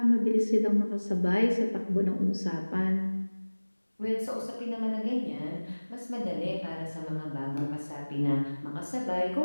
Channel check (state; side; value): inverted; both; correlation -1.00